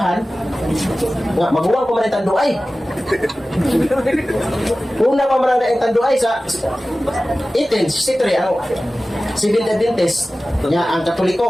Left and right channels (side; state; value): both; normal; correlation 0.96